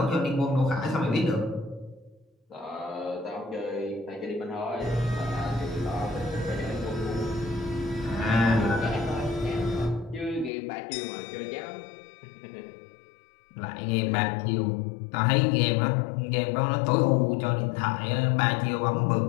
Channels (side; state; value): right; drops out; at 10.5 s